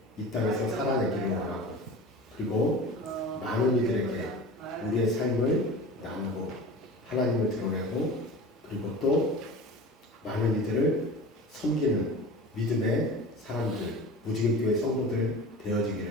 이 땅에서 살아내기를 원하고, 그리고 많은 이들에게 우리의 삶을 나누고 하나님을 드러내고, 그리고 또 많은 이들을 섬기는 믿음의 사람들, 무지개교회 성도들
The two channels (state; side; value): normal; both; correlation 0.35